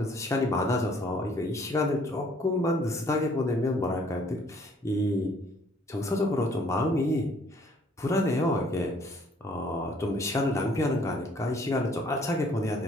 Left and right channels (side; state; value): both; normal; correlation 0.61